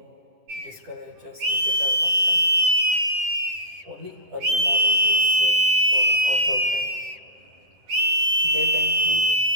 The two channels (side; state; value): left; late; 10 ms